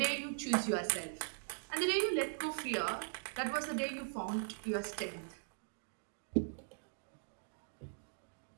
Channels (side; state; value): left; silent; digital silence